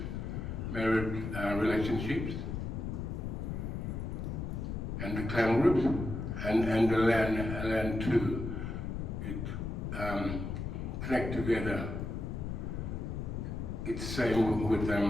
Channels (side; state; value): left; noise; rumble, 4 dB below the sound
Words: relationships, and the clan groups, and the land too. It connect together. It's same with